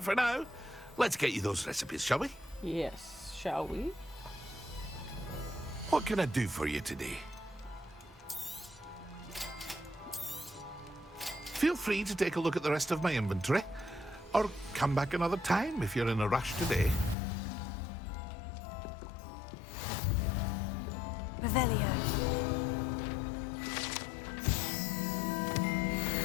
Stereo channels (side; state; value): right; drops out; at 17.2 s